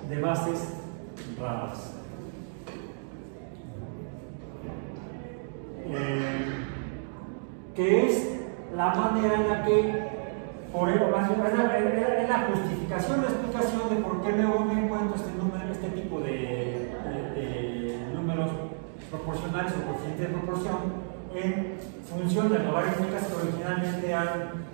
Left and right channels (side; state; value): left; silent; digital silence